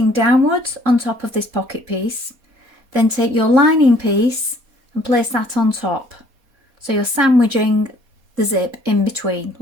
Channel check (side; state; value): left; late; 4.2 ms